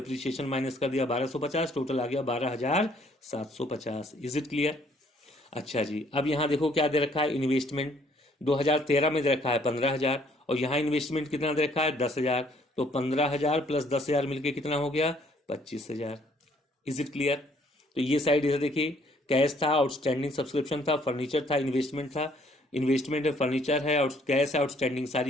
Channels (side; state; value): both; normal; correlation 0.63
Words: माइनस कर दिया 1250, टोटल आ गया 12,750। Is it clear? अच्छा जी, अब यहाँ देखो क्या दे रखा है, इन्वेस्टमेंट 2013 में दे रखा है 15,000 और यहाँ इन्वेस्टमेंट कितना दे रखा है 10,000। तो 15,000 प्लस 10,000 मिलके कितना हो गया 25,000। Is it clear? तो ये साइड इधर देखिए, कैश था, आउटस्टैंडिंग सब्सक्रिप्शन था, फर्नीचर था, इन्वेस्टमेंट था। इन्वेस्टमेंट है, फर्नीचर है, कैश है, आउटस्टैंडिंग,